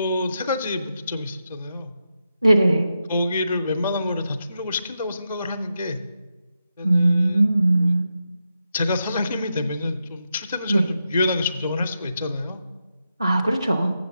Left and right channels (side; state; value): both; inverted; correlation -0.86